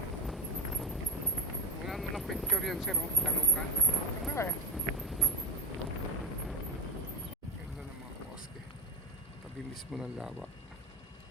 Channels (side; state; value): both; normal; correlation 0.15